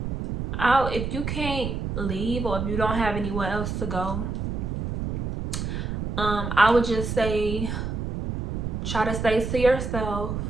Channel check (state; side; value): noise; right; rumble, 3 dB below the sound